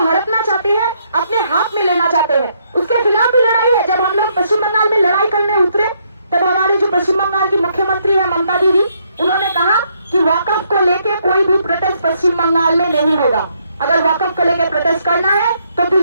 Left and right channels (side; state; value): both; inverted; correlation -0.73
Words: हड़पना चाहती है, अपने हाथ में लेना चाहते हैं। उसके खिलाफ भी लड़ाई है। जब हम लोग पश्चिम बंगाल में लड़ाई करने उतरे तब हमारी जो पश्चिम बंगाल की मुख्यमंत्री है ममता दीदी, उन्होंने कहा कि वक्फ को लेके कोई भी प्रोटेस्ट पश्चिम बंगाल में नहीं होगा। अगर वक्फ को लेकर प्रोटेस्ट करना है तो